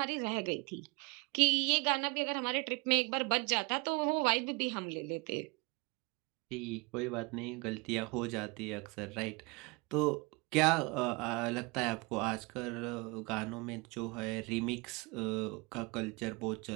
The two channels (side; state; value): left; quieter; 28.0 dB